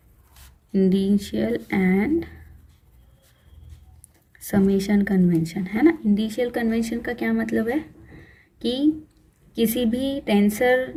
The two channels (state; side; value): identical; both; correlation 1.00